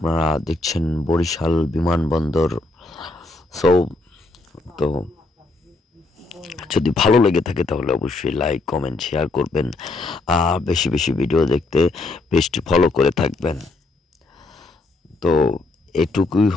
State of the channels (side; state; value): right; quieter; 3.1 dB